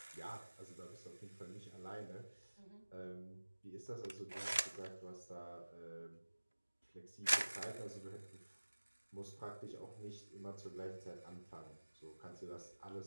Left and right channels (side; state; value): both; inverted; correlation -1.00